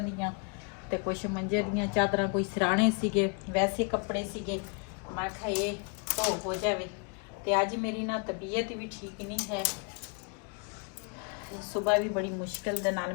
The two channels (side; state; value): right; quieter; 35.2 dB